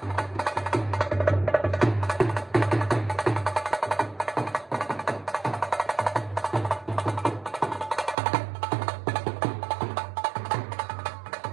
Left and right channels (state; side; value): drops out; left; at 8.2 s